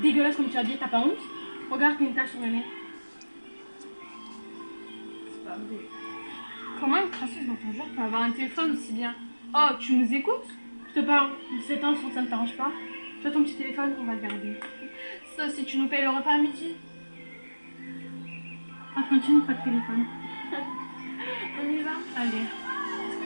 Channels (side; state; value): both; inverted; correlation -1.00